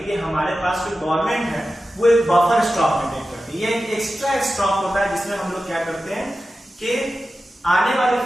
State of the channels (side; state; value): both; normal; correlation 0.93